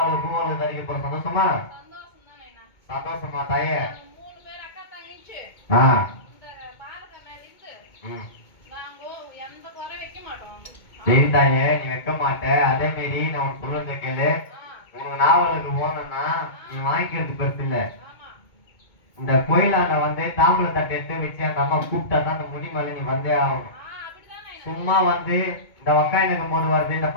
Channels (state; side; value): late; right; 2.2 ms